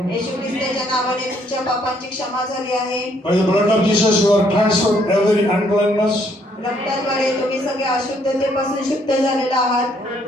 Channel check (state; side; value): normal; both; correlation 0.68